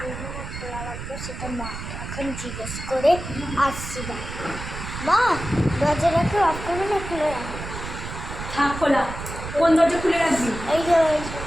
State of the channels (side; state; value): right; noise; rumble, 9 dB below the sound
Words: না খোলা রাখবো সেটা মাকে এখন জিজ্ঞেস করে আসছি। মা, দরজাটাকে অফ করবো না খুলে রাখবো? থাক খোলা। কোন দরজা খুলে রাখবি? এই যে